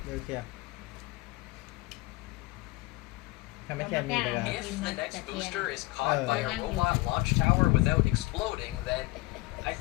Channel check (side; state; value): right; quieter; 20.9 dB